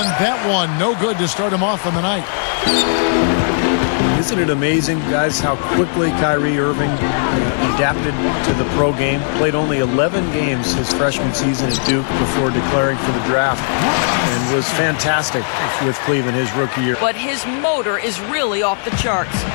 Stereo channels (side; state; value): right; silent; 68 dB below the other